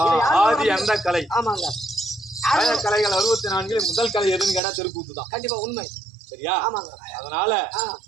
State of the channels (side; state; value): left; drops out; at 4.6 s